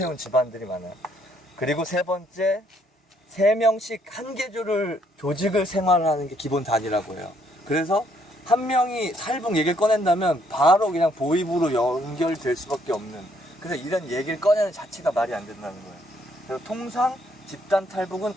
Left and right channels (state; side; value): normal; both; correlation 0.69